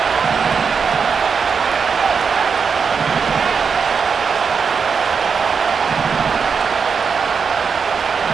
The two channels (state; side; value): quieter; left; 5.9 dB